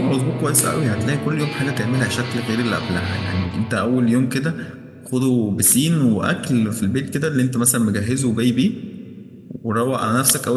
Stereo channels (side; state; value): both; identical; correlation 1.00